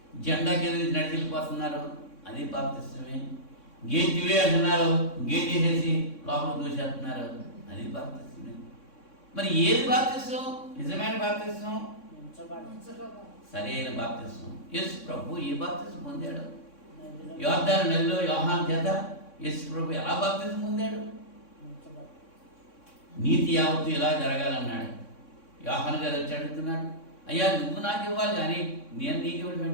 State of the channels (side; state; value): right; late; 3.6 ms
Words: జెండా కింద నుంచి నడిచిపోతున్నారు, అది బాప్తిసమే. గేటివే అంటున్నారు, గేట్ వేసేసి లోపల దూసేస్తున్నారు, అది బాప్తిసమే. మరి ఏది బాప్తిసం? నిజమైన బాప్తిసం, సరైన బాప్తిసం. యేసు ప్రభు ఏ బాప్తిసం పొందాడు? యోర్దాను నదిలో యోహాను చేత యేసు ప్రభు ఎలా బాప్తిసం పొందాడు? నీతి యావత్తు ఇలా జరగాలన్నాడు. యోహాను గారు వచ్చి అడుగుతున్నాడు, అయ్యా నువ్వు నాకు ఇవ్వాలి కానీ నేను నీకు ఇవ్వడం